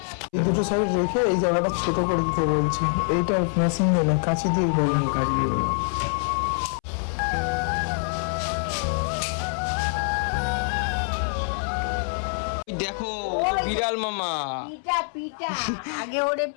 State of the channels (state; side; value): silent; right; 62 dB below the other